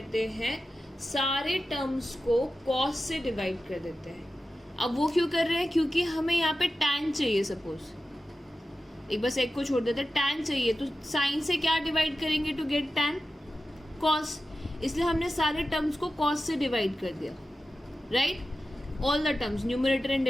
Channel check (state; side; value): normal; both; correlation 0.93